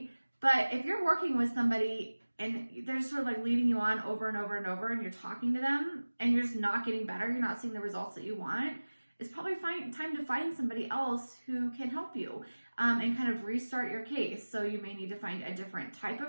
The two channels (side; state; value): both; inverted; correlation -1.00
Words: But if you're working with somebody and they're just sort of like leading you on over and over and over, and you're talking to them and you're just not getting better, you're not seeing the results that you want, it's probably time to find somebody else who can help you and kind of restart your case. So you may need to find a different type